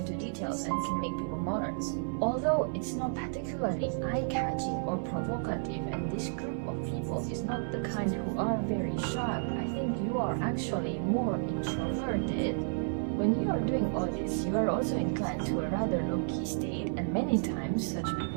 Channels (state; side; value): silent; left; 56 dB below the other